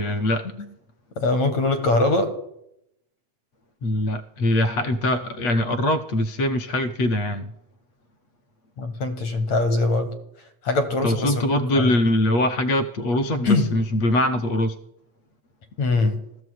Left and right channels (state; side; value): late; right; 8.8 ms